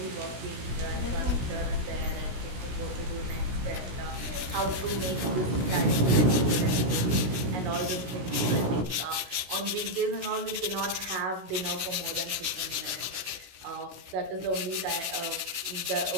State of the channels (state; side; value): late; left; 16 ms